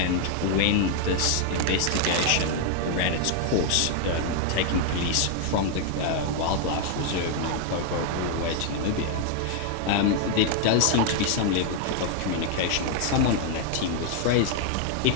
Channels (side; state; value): both; different; correlation 0.00